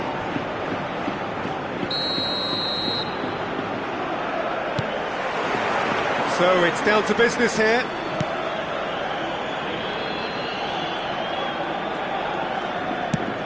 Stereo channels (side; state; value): left; noise; rumble, 29 dB below the sound